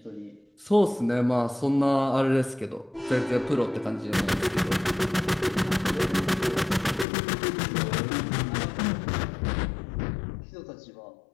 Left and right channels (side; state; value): right; drops out; at 7.1 s